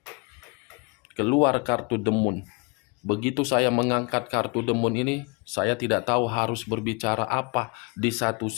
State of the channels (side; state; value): right; quieter; 30.7 dB